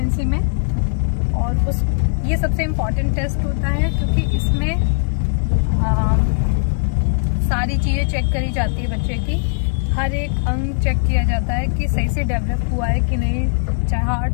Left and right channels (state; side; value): silent; right; 67 dB below the other